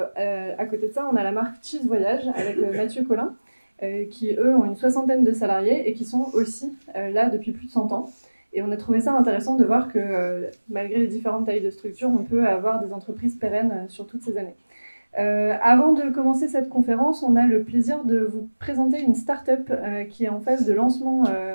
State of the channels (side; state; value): both; inverted; correlation -1.00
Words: côté de ça, on a la marque Cheese Voyage avec Mathieu Collin, qui, eux, ont une 60aine de salariés et qui sont aussi là depuis plus de 100 ans. Et on a trouvé ça intéressant de voir que, malgré les différentes tailles de structures, on peut avoir des entreprises pérennes sur toutes ces années. Avant de commencer cette conférence, on a le plaisir de vous présenter une start-up qui est en phase de lancement